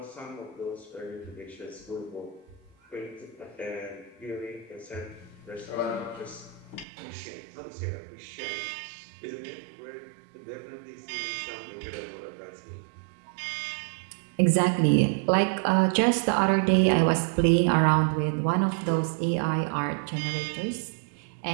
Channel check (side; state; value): left; drops out; at 6.9 s